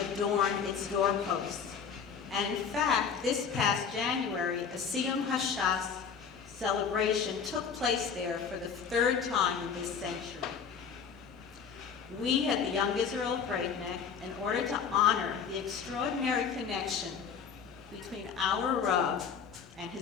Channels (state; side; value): quieter; right; 6.6 dB